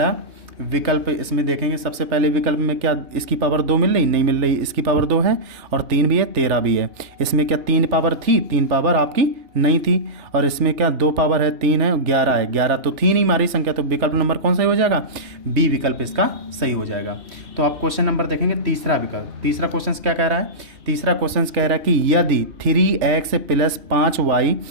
विकल्प इसमें देखेंगे। सबसे पहले विकल्प में क्या इसकी पावर 2 मिल रही, नहीं मिल रही। इसकी पावर 2 है और 3 भी है, 13 भी है। इसमें क्या 3 पावर थी, 3 पावर आपकी नहीं थी। और इसमें क्या 2 पावर है, 3 है, 11 है। 11 तो थी नहीं हमारी संख्या। तो विकल्प नंबर कौन सही हो जाएगा, बी विकल्प इसका सही हो जाएगा। तो आप क्वेश्चन नंबर देखेंगे तीसरा विकल्प। तीसरा क्वेश्चन क्या कह रहा है, तीसरा क्वेश्चन कह रहा है कि यदि 3x + 5y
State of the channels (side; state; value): left; late; 3.3 ms